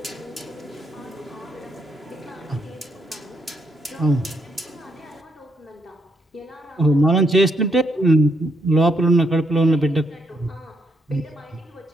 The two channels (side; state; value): both; normal; correlation 0.76